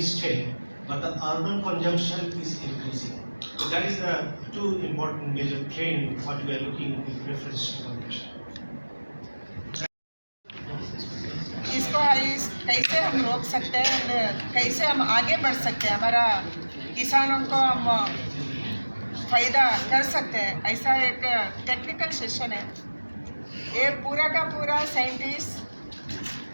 state, but the urban consumption is increasing. So that is the 2 important major trend what we are looking with reference to consumption. इसको कैसे हम रोक सकते हैं, कैसे हम आगे बढ़ सकते हैं, हमारा किसानों को हम फायदा कर सकते हैं, ऐसा एक टेक्निकल सेशन है। ये पूरा का पूरा साइंटिस्ट,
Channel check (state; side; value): inverted; both; correlation -1.00